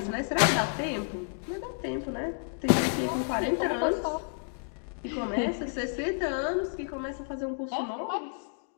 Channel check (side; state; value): right; silent; digital silence